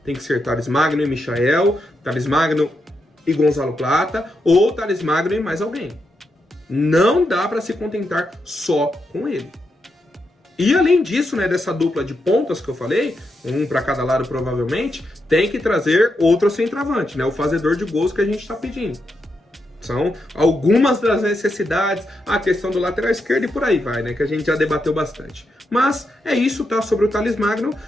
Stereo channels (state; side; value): normal; both; correlation 0.84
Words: Tem que ser Thalys Magno e Michael, Thalys Magno e Gonzalo Plata, ou Thalys Magno e mais alguém. Não dá para se contentar só com ele. E além disso, né, dessa dupla de pontas que eu falei, um para cada lado provavelmente, tem que trazer outro centroavante, né, o fazedor de gols que a gente está pedindo. São algumas das necessidades, a questão do lateral esquerdo e por aí vai, né, que a gente já debateu bastante. Mas é isso, tá, sobre o Thalys Magno.